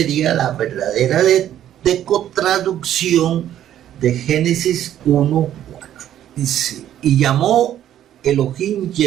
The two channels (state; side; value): quieter; left; 11.4 dB